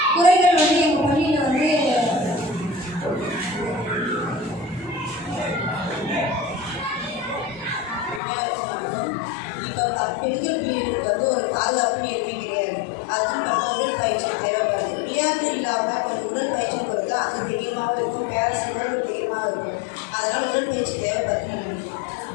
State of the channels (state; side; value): drops out; right; at 8.2 s